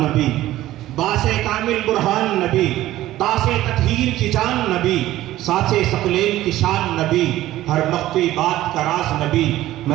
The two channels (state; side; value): quieter; left; 15.0 dB